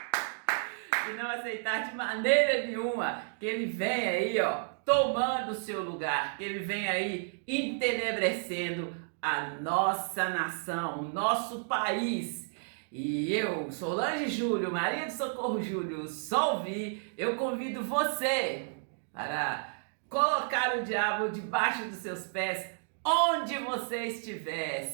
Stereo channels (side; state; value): left; silent; digital silence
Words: E não aceitar de maneira nenhuma que ele venha aí, tomando o seu lugar, que ele venha aí entenebrecendo a nossa nação, o nosso país. E eu, Solange Júlio, Maria de Socorro Júlio, só ouvi, eu convido você para colocar o diabo debaixo dos seus pés, onde você estiver,